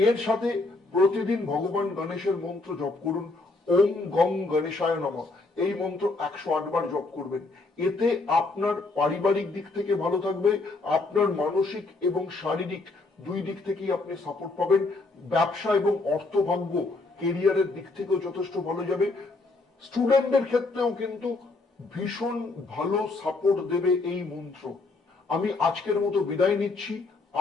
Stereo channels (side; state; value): right; quieter; 3.4 dB